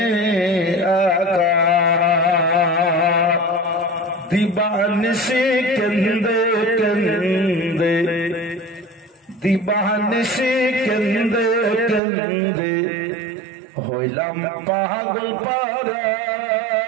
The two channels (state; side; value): drops out; left; at 12.0 s